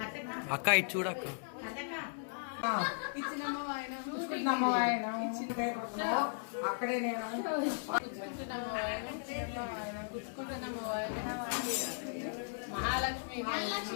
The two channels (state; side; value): silent; right; digital silence